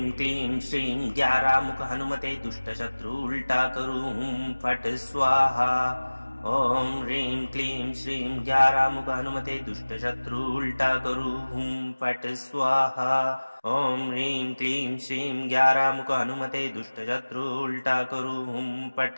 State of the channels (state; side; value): inverted; both; correlation -1.00